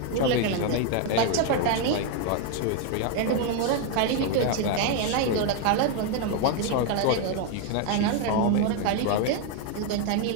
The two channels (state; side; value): different; both; correlation 0.01